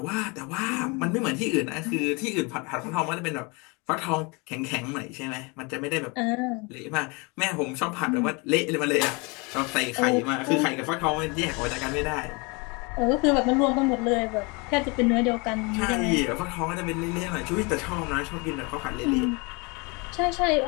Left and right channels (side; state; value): right; quieter; 29.1 dB